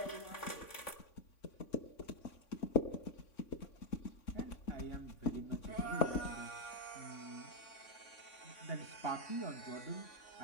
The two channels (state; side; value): late; right; 3.6 ms